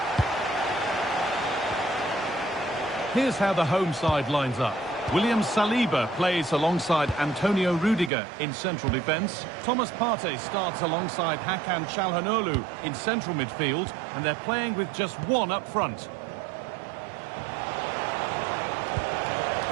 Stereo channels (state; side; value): drops out; left; at 8.1 s